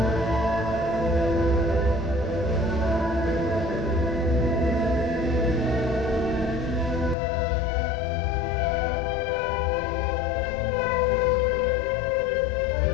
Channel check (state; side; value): drops out; right; at 7.2 s